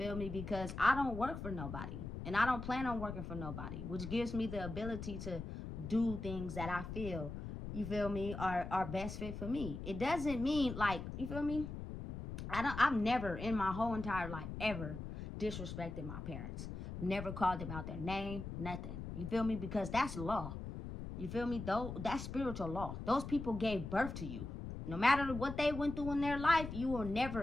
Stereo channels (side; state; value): left; noise; rumble, 7 dB below the sound